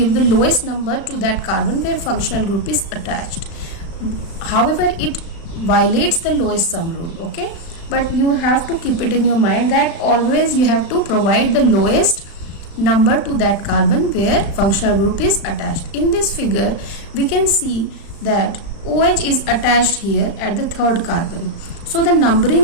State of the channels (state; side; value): late; right; 35 ms